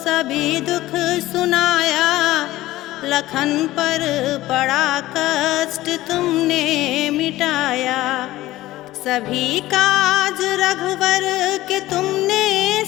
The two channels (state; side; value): quieter; right; 16.6 dB